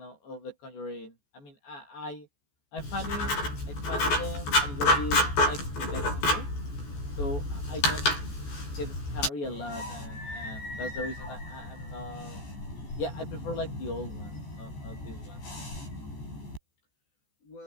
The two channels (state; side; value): late; right; 14 ms